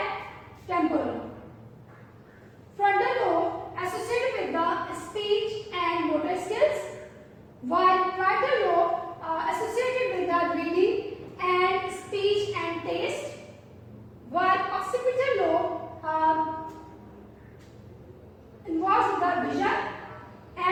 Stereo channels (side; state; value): both; identical; correlation 1.00